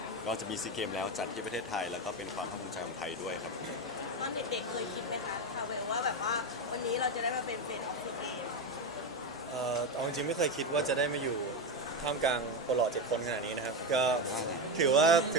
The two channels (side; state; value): both; normal; correlation 0.13